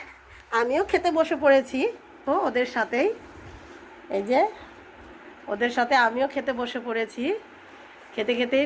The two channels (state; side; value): identical; both; correlation 1.00